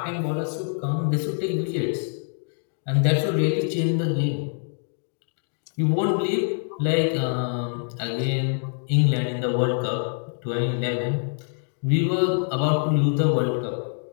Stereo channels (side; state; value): right; silent; 58 dB below the other